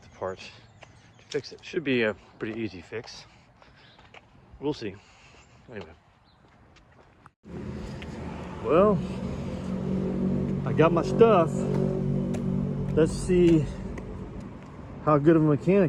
parts to fix it. Should be a pretty easy fix. We'll see. Anyway. Well, I got my stuff. Let's see how good of a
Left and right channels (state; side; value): identical; both; correlation 1.00